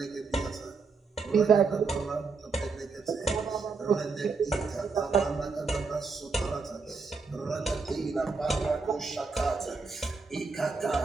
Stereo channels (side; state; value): left; quieter; 4.6 dB